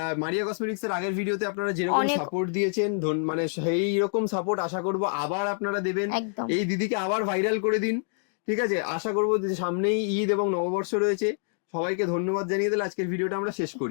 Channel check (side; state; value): right; silent; digital silence